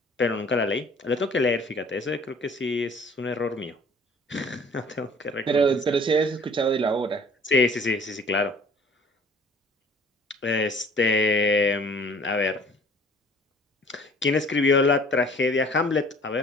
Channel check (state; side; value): normal; both; correlation 0.52